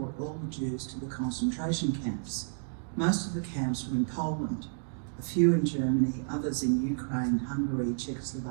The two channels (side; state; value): left; silent; digital silence